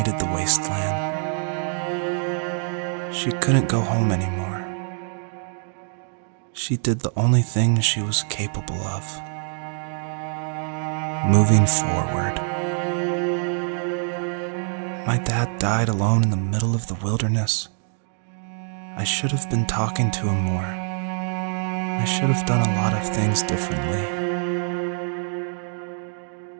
the wasteland. She couldn't go home anymore. She did the only thing she was capable of: moving forward. My dad died alone in the middle of the wilderness. I should have been talking to him more. I should have done a lot of things differently.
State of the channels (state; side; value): silent; left; 62 dB below the other